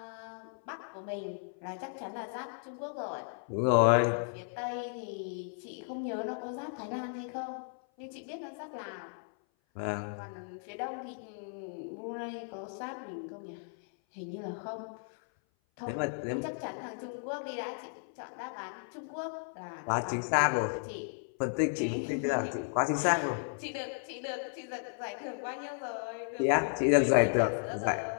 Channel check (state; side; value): silent; right; 55 dB below the other